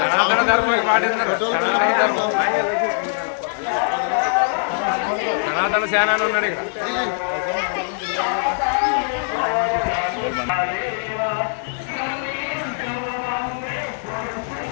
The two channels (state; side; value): silent; right; digital silence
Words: ధర్మం పాటిస్తున్నారు. సనాతన సేనాని ఉన్నాడు ఇక్కడ.